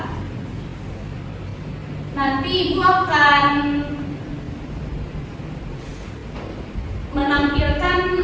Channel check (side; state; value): both; identical; correlation 1.00